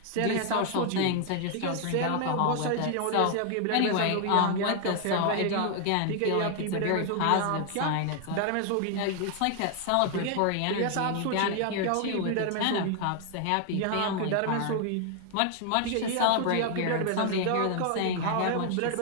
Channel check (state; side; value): different; both; correlation 0.00